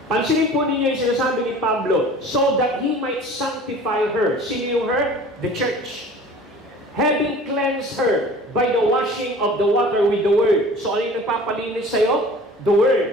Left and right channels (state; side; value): normal; both; correlation 0.44